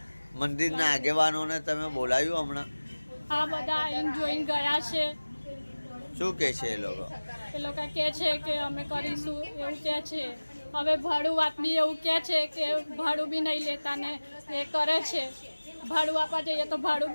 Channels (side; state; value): both; inverted; correlation -1.00